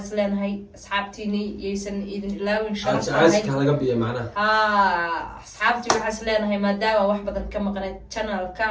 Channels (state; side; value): identical; both; correlation 1.00